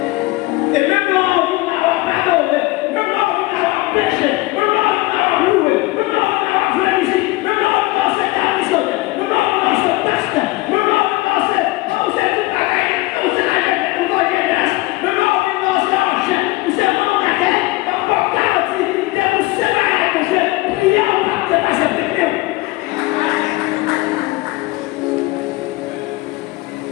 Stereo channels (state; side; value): quieter; right; 20.8 dB